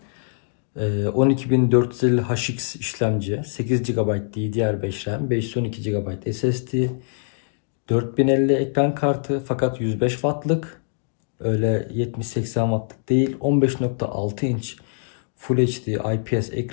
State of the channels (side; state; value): right; silent; digital silence